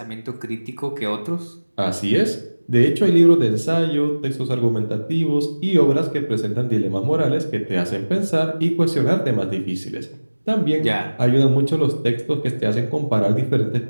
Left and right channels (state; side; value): inverted; both; correlation -1.00